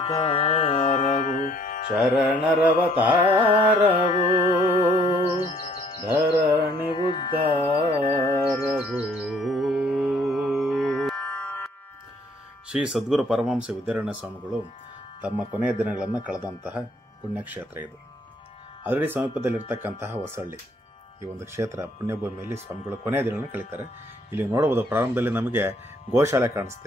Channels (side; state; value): both; normal; correlation 0.62